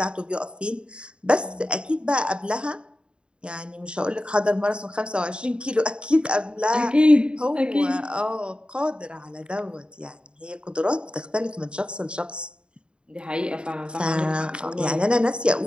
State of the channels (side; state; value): left; late; 0.053 ms